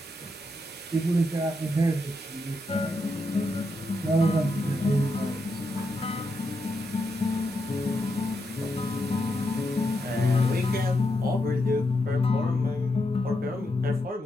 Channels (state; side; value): normal; both; correlation 0.83